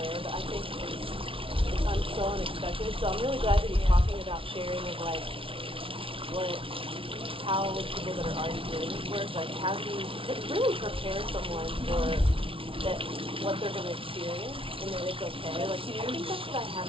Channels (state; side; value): late; left; 0.26 ms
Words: but I think it's so unexpected. So I'm really glad to be talking about sharing of like how people that are already doing this work, like how do you really prepare someone for that what they're going to experience and that it's okay. Like I think that's what I